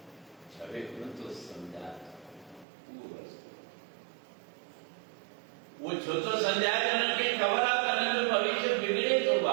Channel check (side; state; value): left; drops out; at 2.7 s